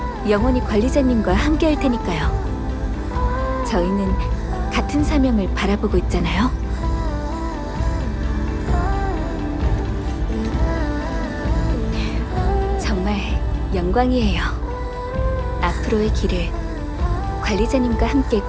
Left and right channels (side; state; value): both; identical; correlation 1.00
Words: 영원히 관리자님과 함께 할 테니까요. 저희는 같은 사명을 바라보고 있잖아요. 정말 영광이에요. 앞으로의 길을 관리자님과 함께